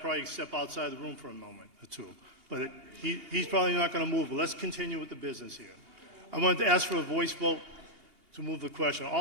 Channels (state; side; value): late; left; 2.8 ms